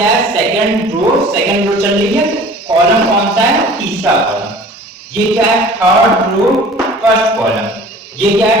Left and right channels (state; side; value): normal; both; correlation 0.46